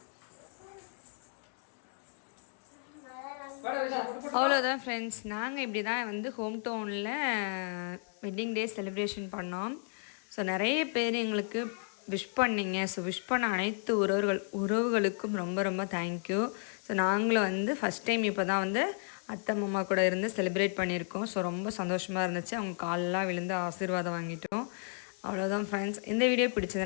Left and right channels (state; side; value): silent; right; 56 dB below the other